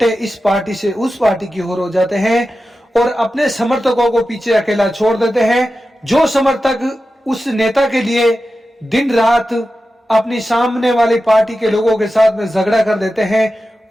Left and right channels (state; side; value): normal; both; correlation 0.92